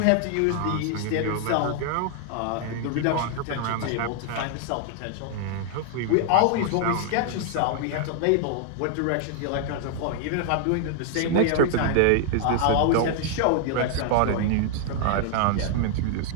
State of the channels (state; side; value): different; both; correlation 0.00